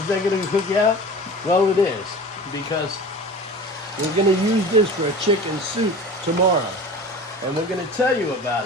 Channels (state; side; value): normal; both; correlation 0.37